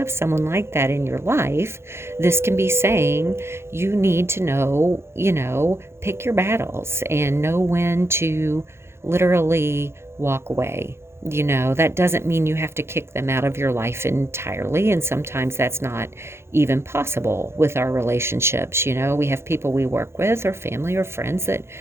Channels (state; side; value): late; left; 0.12 ms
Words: someone like that in your life, this can be saying you need to know, pick your battles and know when to literally walk away. That doesn't mean you have to kick them out of your life entirely. And sometimes that's not even possible with our relationships. We have people we work with or family or friends that